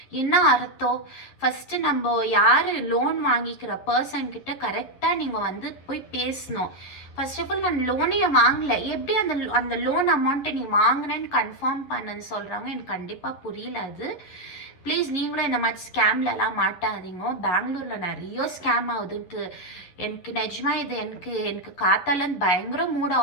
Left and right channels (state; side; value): late; right; 11 ms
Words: என்ன அர்த்தம்? ஃபர்ஸ்ட் நம்ம யாரு லோன் வாங்கிக்கிற பர்சன் கிட்ட கரெக்டா நீங்க வந்து போய் பேசணும். ஃபர்ஸ்ட் ஆஃப் ஆல் நான் லோனே வாங்கல, எப்படி அந்த லோன் அமௌண்ட்டை நீ வாங்கினேன்னு கன்ஃபார்ம் பண்ணுன்னு சொல்றாங்க. எனக்கு கண்டிப்பா புரியல அது. ப்ளீஸ் நீங்களும் இந்த மாதிரி ஸ்கேம்லலாம் மாட்டாதீங்க. பெங்களூரில் நிறைய ஸ்கேம் ஆகுதுன்ட்டு எனக்கு நிஜமா இது எனக்கு காத்தாலேருந்து பயங்கர மூட்